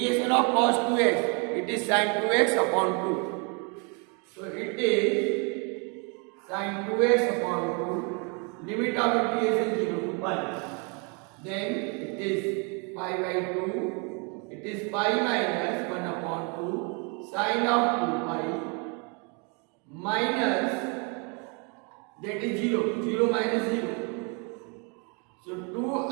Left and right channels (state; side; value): quieter; left; 34.3 dB